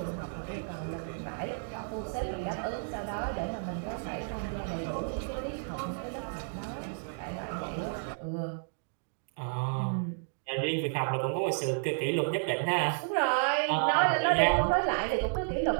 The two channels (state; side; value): silent; left; digital silence